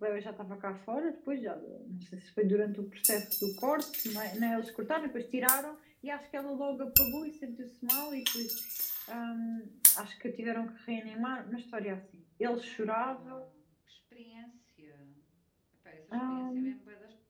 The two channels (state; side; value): identical; both; correlation 1.00